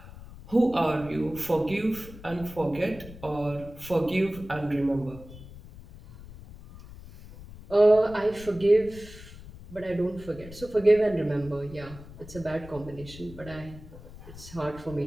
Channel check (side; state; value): left; noise; rumble, 16 dB below the sound